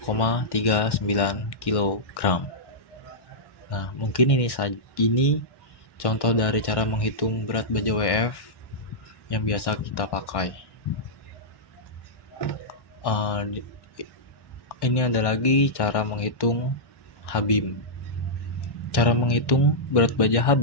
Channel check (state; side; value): late; right; 1.6 ms